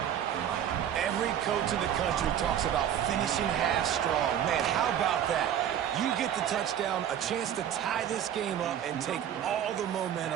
Every coach in the country talks about finishing half strong. Man, how about that? You get the touchdown, a chance to tie this game up and take all the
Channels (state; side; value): quieter; left; 9.9 dB